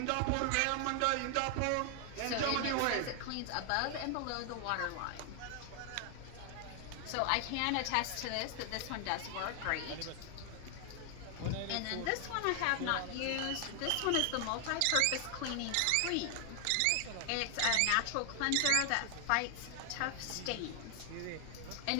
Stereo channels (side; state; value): both; different; correlation 0.00